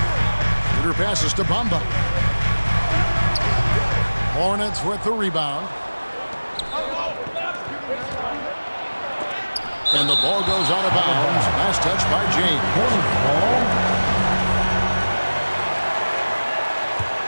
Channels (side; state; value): both; inverted; correlation -1.00